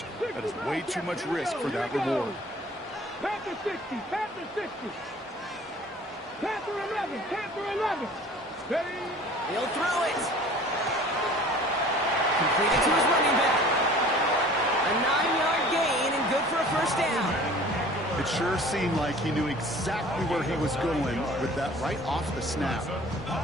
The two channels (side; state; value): both; normal; correlation 0.47